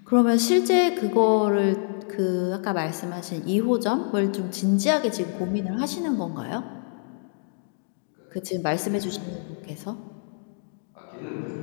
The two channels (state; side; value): silent; right; digital silence